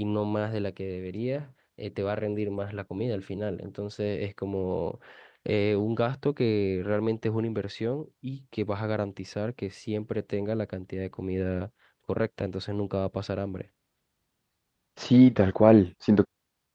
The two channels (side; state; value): both; identical; correlation 1.00